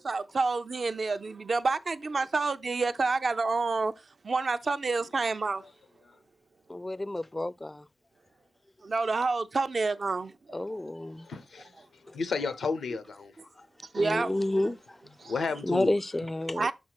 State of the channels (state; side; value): normal; both; correlation 0.93